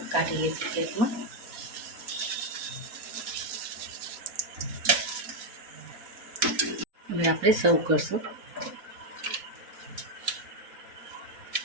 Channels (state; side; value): late; left; 4.1 ms